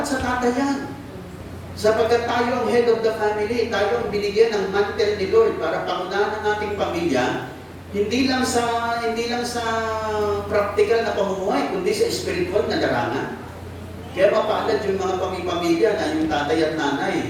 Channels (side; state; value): both; identical; correlation 1.00